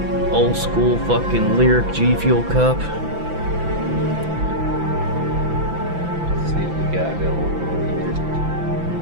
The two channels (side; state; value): left; late; 6.0 ms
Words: old school fucking Lyric G Fuel cup. Let's see what we got going.